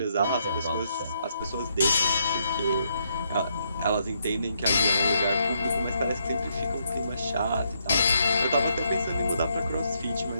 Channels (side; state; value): both; inverted; correlation -0.76